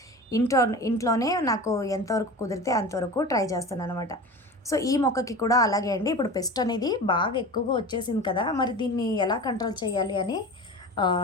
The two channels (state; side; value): normal; both; correlation 0.32